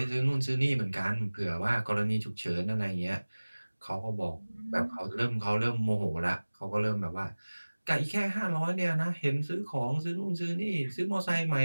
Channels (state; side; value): inverted; both; correlation -1.00